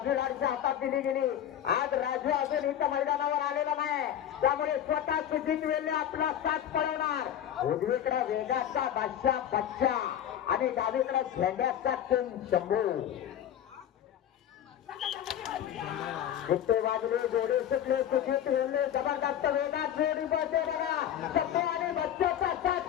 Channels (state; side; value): quieter; right; 10.5 dB